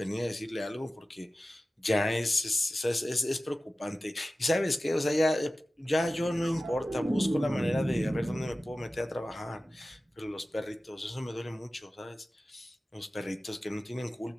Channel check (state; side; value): normal; both; correlation 0.95